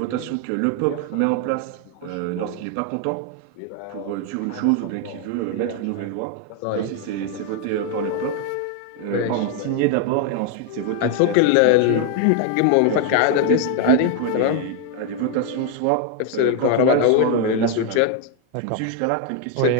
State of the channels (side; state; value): both; different; correlation 0.00